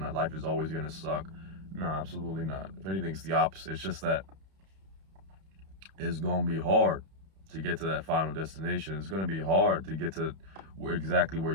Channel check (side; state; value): left; late; 31 ms